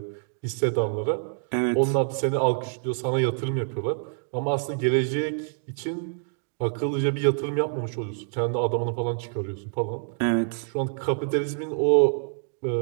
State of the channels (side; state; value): left; silent; digital silence